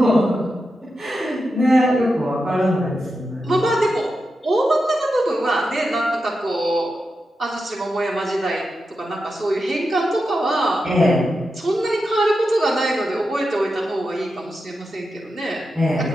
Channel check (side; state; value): both; normal; correlation 0.89